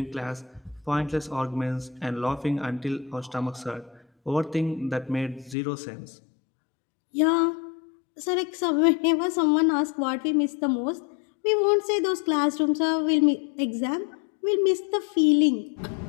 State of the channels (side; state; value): right; drops out; at 5.6 s